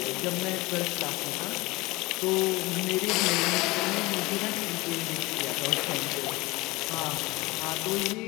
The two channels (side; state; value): right; quieter; 21.9 dB